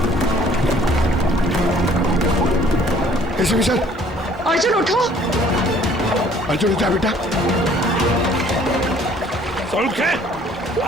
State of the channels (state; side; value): normal; both; correlation 0.57